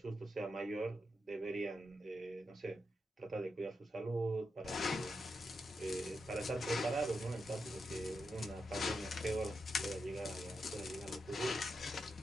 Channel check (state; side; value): normal; both; correlation 0.86